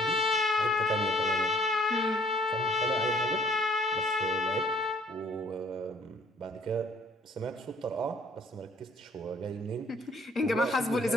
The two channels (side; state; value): both; normal; correlation 0.60